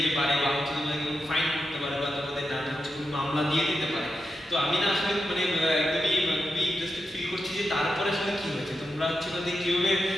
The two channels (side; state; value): both; normal; correlation 0.88